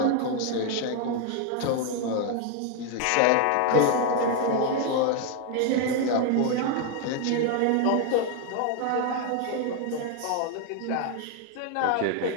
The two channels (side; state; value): both; different; correlation 0.01